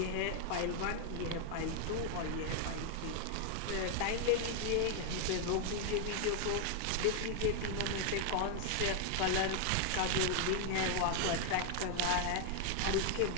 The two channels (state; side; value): different; both; correlation 0.00